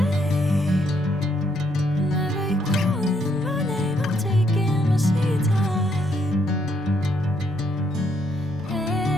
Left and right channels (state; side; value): normal; both; correlation 0.73